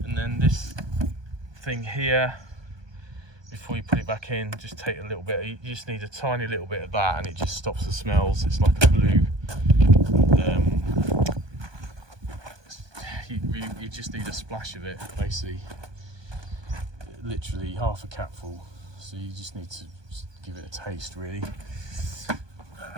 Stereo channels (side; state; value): left; late; 1.2 ms